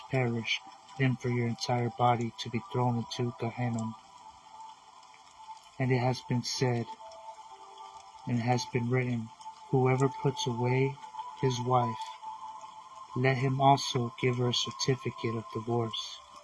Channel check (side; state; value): both; identical; correlation 1.00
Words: perish than for your entire body to be thrown into Gehenna. And it has been said, and it has been written, whoever puts away his wife, let him also give her a certificate of divorce.